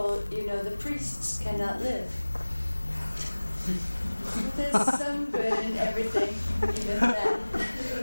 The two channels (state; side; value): inverted; both; correlation -1.00